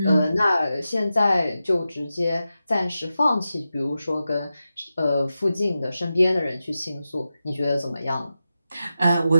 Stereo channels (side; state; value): both; inverted; correlation -0.91